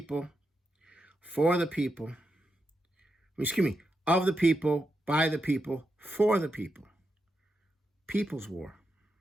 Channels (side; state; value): both; normal; correlation 0.85